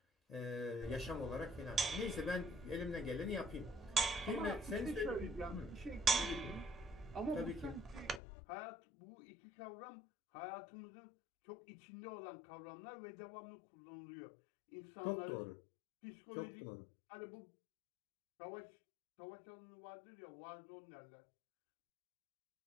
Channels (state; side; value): drops out; right; at 8.2 s